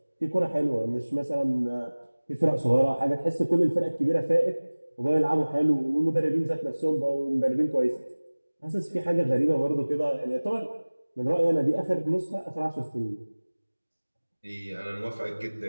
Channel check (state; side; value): inverted; both; correlation -1.00